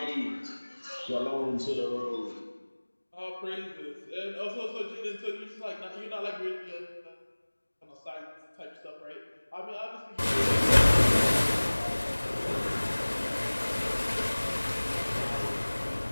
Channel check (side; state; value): both; inverted; correlation -1.00